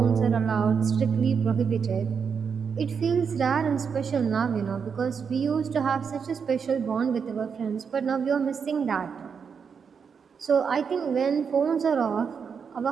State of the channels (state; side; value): quieter; left; 6.3 dB